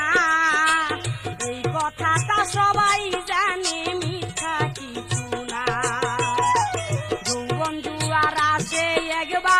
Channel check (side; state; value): both; identical; correlation 1.00